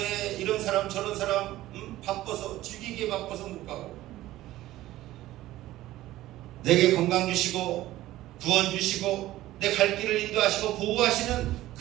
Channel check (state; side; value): quieter; left; 15.6 dB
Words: 이런 사람 저런 사람 바빠서 즐기기에 바빠서 못 가고, 내게 건강 주시고 구원 주시고 내 갈 길을 인도하시고 보호하시는